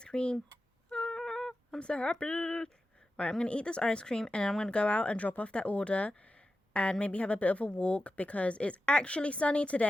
cream. Ah, I'm so happy. Right, I'm going to eat this ice cream, and I'm going to go out and drop off that order and maybe have a bit of a walk because it's actually sunny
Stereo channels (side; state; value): both; normal; correlation 0.92